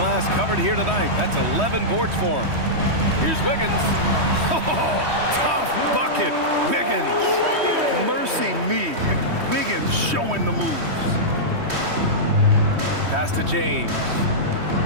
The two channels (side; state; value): left; late; 3.1 ms